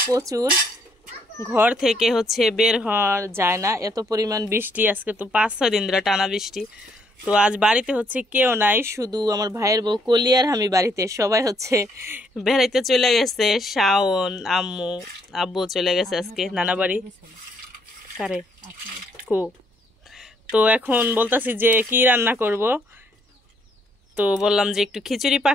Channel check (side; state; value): both; normal; correlation 0.69